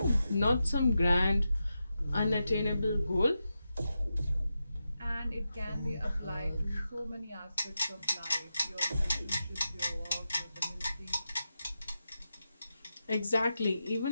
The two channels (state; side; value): inverted; both; correlation -0.89